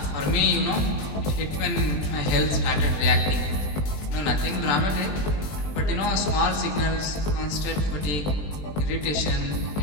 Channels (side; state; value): right; late; 20 ms